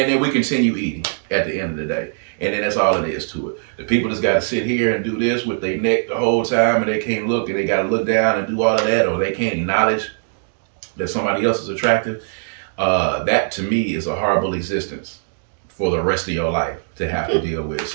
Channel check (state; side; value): silent; left; digital silence